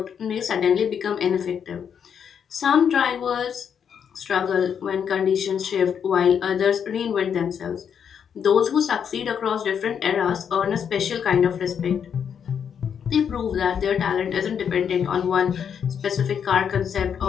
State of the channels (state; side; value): quieter; right; 7.7 dB